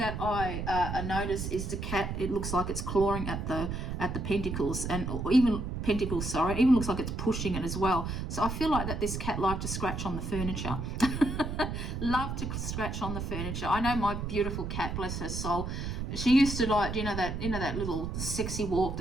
I notice is the cat. It looks like it's clawing at the pentacles, and or even pentacles. Sorry, it even looks like it's pushing it as well. So I feel like that this cat liked to scratch on the furniture. Love to scratch on the furniture. I know my beautiful cat, bless her soul. She used to like, that little sexy walk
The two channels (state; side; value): noise; right; rumble, 4 dB below the sound